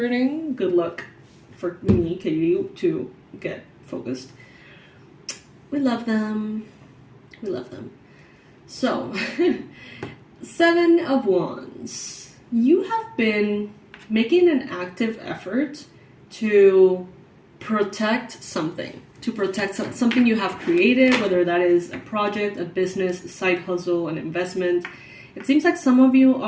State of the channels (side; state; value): both; identical; correlation 1.00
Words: Good luck for me, Katie, to get focused. We love them. We love them. So, 7 of Wands. You have been making an active effort to protect something. To protect something you have created, whether that is a project, a business, a side hustle, an investment. It seems like some of you